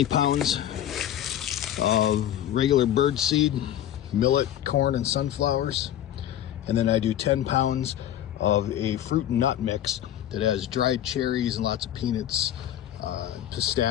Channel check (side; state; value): right; quieter; 11.5 dB